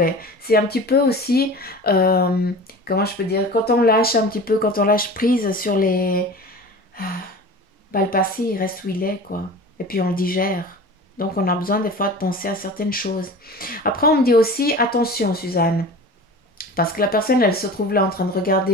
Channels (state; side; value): normal; both; correlation 0.37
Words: C'est un petit peu aussi, comment je peux dire, quand on lâche un petit peu, quand on lâche prise sur les... Bah, le passé, il reste où il est, quoi. Et puis on le digère. Donc on a besoin des fois de penser à certaines choses. Après, on me dit aussi, attention Suzanne, Parce que la personne, elle se trouve là en train de